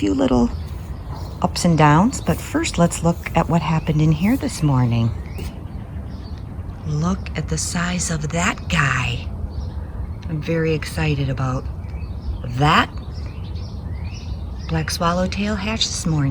little ups and downs, but first let's look at what happened in here this morning. Look at the size of that guy. I'm very excited about that. Black swallowtail hatched this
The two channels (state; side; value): identical; both; correlation 1.00